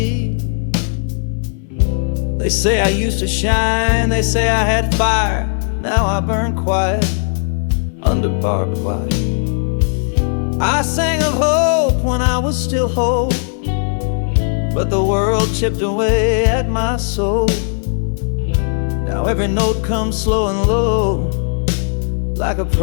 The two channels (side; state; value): right; silent; 63 dB below the other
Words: They say I used to shine, they say I had fire. Now I burn quiet under barbed wire. I sang of hope when I was still whole, but the world chipped away at my soul. Now every note comes slow and low, like a